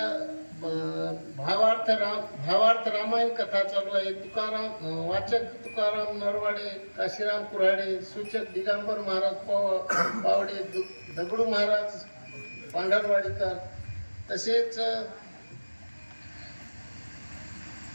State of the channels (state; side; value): inverted; both; correlation -1.00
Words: भावार्थ रामायण कथा चालू आहे. तुकाराम वाचक तुकाराम नरवाडे, काशीराम कुऱ्हाडे, सूचक दिगंबर महाराज पावडे, दगडू महाराज पांढरवाडीकर, तसेच